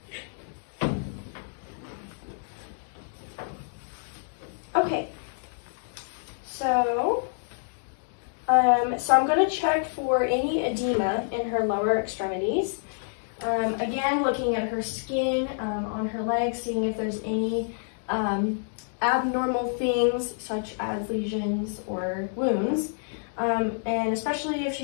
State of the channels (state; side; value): silent; right; digital silence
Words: Okay. So I'm going to check for any edema in her lower extremities. Again, looking at her skin on her legs, seeing if there's any abnormal things such as lesions or wounds. And especially if